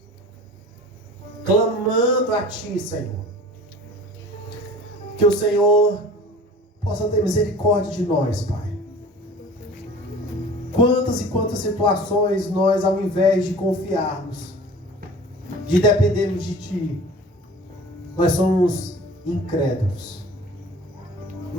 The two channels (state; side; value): normal; both; correlation 0.43